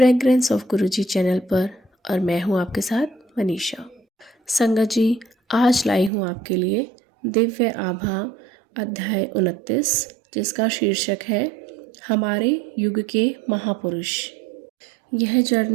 ऑफ गुरुजी चैनल पर और मैं हूं आपके साथ मनीषा। संगत जी, आज लाई हूं आपके लिए दिव्य आभा अध्याय 29, जिसका शीर्षक है हमारे युग के महापुरुष। यह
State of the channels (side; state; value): left; drops out; at 6.1 s